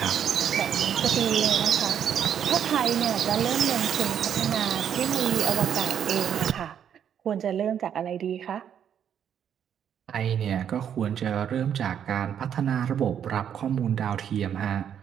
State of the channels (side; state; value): left; quieter; 8.9 dB